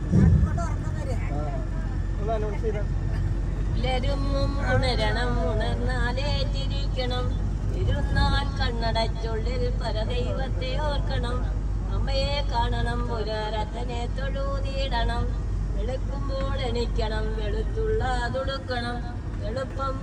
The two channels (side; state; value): both; identical; correlation 1.00